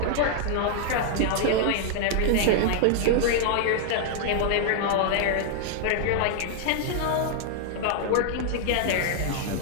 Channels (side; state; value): both; different; correlation -0.01